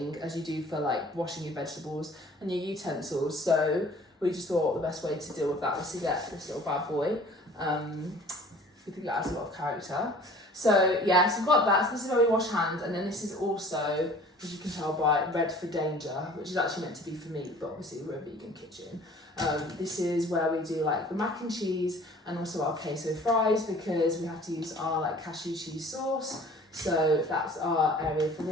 as you do for like washing your vegetables and your utensils. So we just thought the best way to deal with that was to get this little bad boy. We think that has a lot of character. So yeah, so we've got that. So this is where we wash hands, and then this is also, as you can tell by Red for Danger, which is actually meant to be for meat, but obviously we're a vegan kitchen. This is where we do like the mac and cheese and also our queso fries, because we have to use our like cashew cheese sauce. So that's our area for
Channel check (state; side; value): normal; both; correlation 0.48